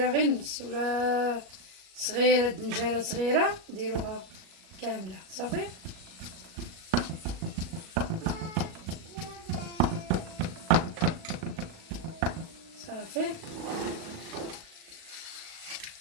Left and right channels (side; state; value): left; late; 37 ms